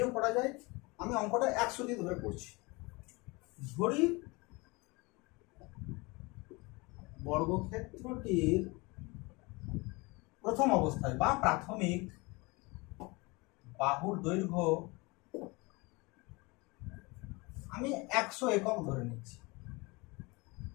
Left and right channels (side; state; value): right; quieter; 25.6 dB